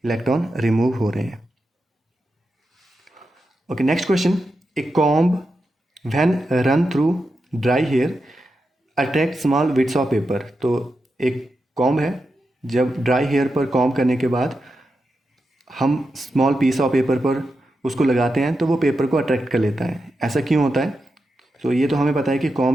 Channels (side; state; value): both; normal; correlation 0.88